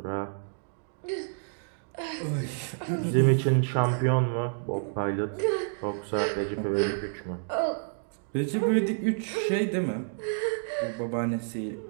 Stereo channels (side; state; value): left; silent; digital silence